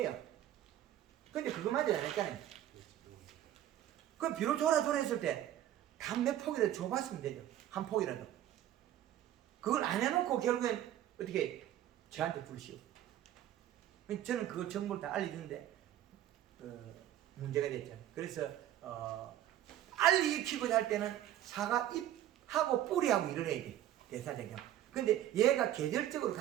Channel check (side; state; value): left; quieter; 12.3 dB